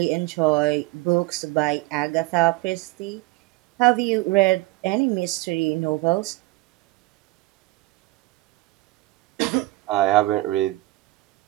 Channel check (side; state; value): left; quieter; 20.3 dB